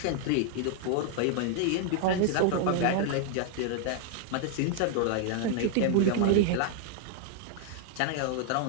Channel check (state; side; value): different; both; correlation 0.00